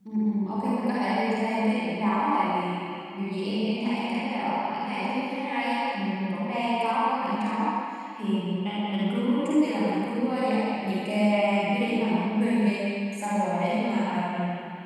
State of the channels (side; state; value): both; identical; correlation 1.00